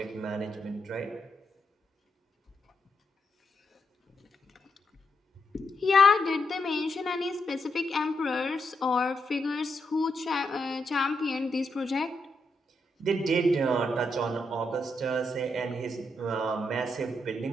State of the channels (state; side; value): normal; both; correlation 0.81